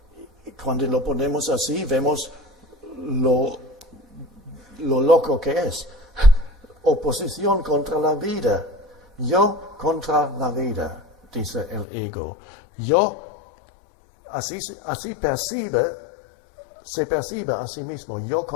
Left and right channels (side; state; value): right; drops out; at 11.9 s